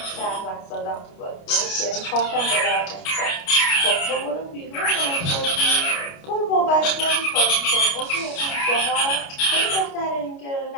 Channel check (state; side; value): late; right; 29 ms